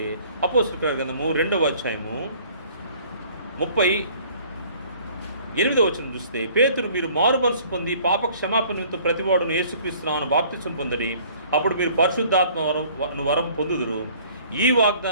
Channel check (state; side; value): inverted; both; correlation -0.54